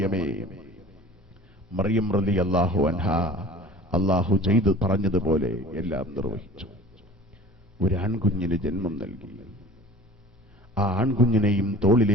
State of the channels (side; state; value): both; normal; correlation 0.43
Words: മറിയം റളിയല്ലാഹു അൻഹാ അല്ലാഹു ചെയ്തു പറഞ്ഞതുപോലെ എല്ലാം നിർവഹിച്ചു. ഒരു ആൺകുഞ്ഞിന് ജന്മം നൽകി. ആ ആൺകുഞ്ഞിനെയും